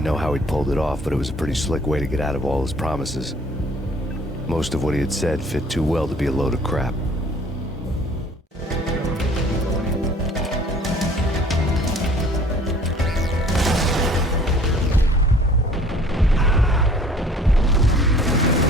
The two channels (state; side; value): normal; both; correlation 0.53